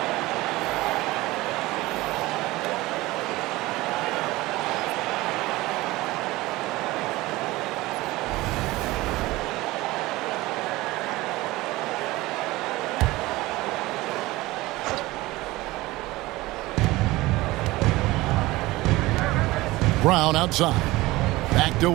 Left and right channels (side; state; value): left; quieter; 19.5 dB